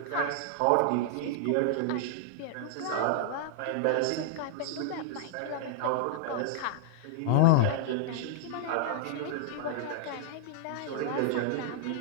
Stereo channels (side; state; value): both; different; correlation -0.01